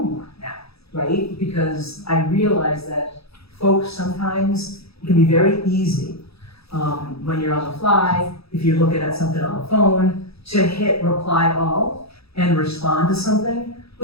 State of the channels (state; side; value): late; right; 0.77 ms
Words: more now, right? Because I realize that folks sometimes, it can be very easy when you're on the fly, if you're looking at something on the phone, to hit reply all and respond to something